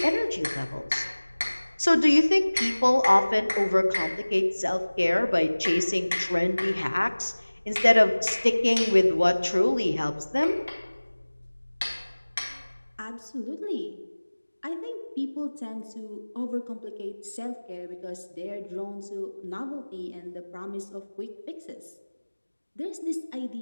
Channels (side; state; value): both; inverted; correlation -1.00